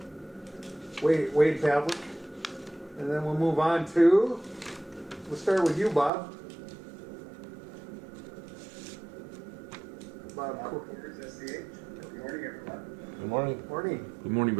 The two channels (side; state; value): left; drops out; at 6.1 s